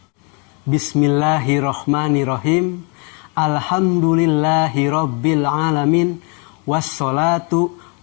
Bismillahirrahmanirrahim. Alhamdulillahi rabbil alamin. Wassalatu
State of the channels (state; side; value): quieter; right; 34.1 dB